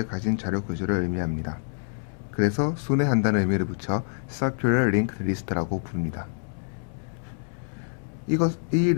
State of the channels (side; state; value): right; silent; digital silence